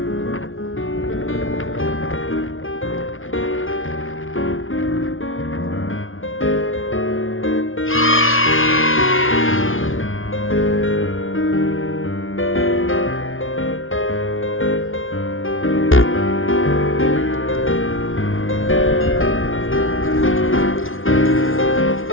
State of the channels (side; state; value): right; late; 0.58 ms